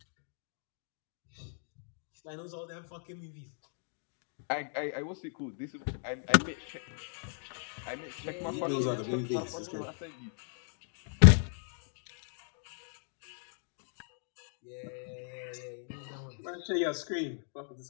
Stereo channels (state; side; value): silent; right; 54 dB below the other